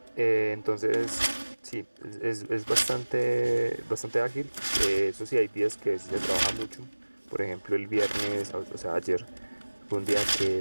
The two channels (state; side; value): inverted; both; correlation -1.00